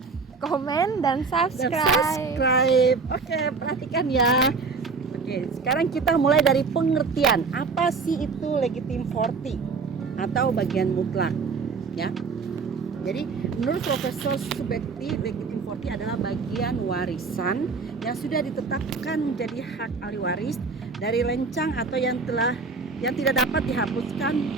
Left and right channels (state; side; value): quieter; left; 4.6 dB